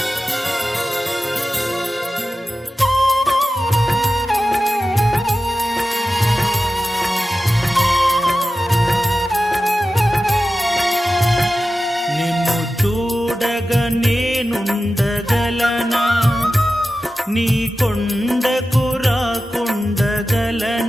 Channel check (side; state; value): both; normal; correlation 0.94